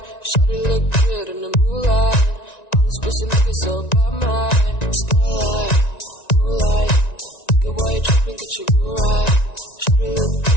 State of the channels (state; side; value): late; right; 1.9 ms